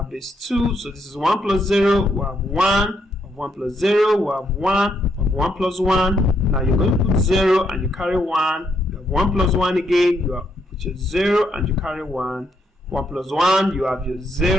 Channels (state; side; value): normal; both; correlation 0.76